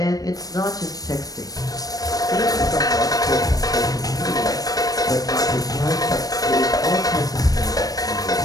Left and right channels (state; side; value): late; right; 0.18 ms